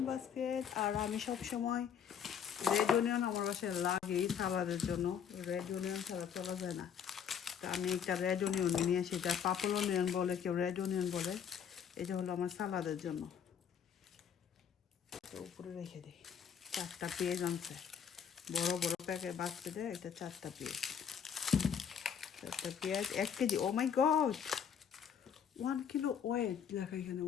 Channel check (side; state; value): right; quieter; 7.8 dB